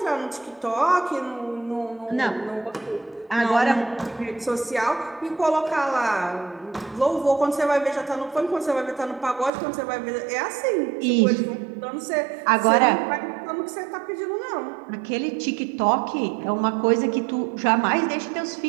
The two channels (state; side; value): drops out; left; at 9.5 s